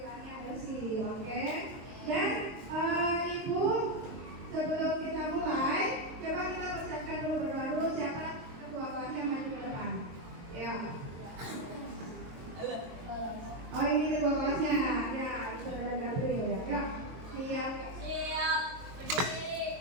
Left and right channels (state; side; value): late; left; 23 ms